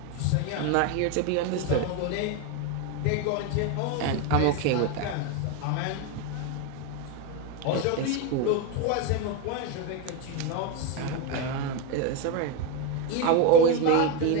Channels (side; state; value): both; different; correlation 0.03